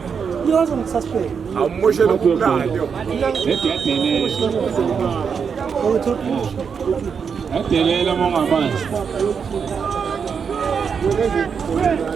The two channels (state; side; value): quieter; left; 6.4 dB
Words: Yoza ngisuspect. amushe lokumnandi adelela mongamanje